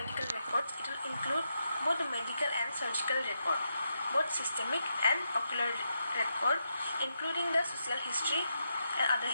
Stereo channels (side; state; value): both; inverted; correlation -0.83